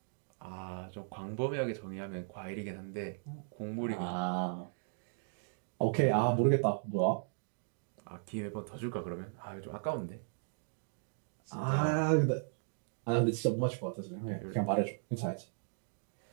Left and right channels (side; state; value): left; silent; digital silence